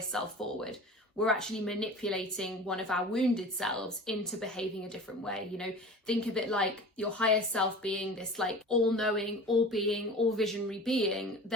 self forward. We're actually manipulating one of our wounded selves into behaving a different way. Think of it like your higher self being this like all-knowing, all-being, all-visionary being.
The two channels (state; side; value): normal; both; correlation 0.38